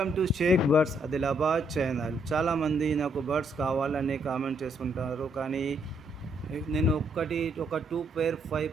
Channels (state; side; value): normal; both; correlation 0.73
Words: to Shaik birds Adilabad channel. చాలామంది నాకు birds కావాలని కామెంట్ చేసుకుంటారు, కానీ నేను ఒక 5